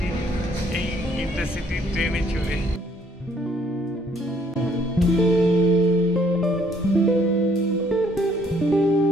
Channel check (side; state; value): both; normal; correlation 0.64